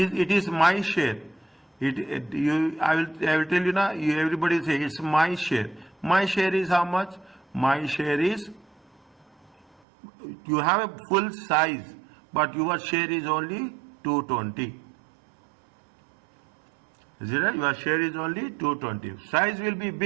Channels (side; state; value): left; drops out; at 9.8 s